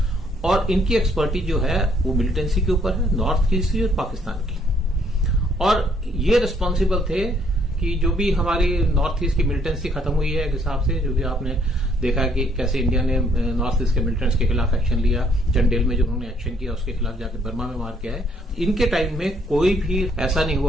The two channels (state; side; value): normal; both; correlation 0.66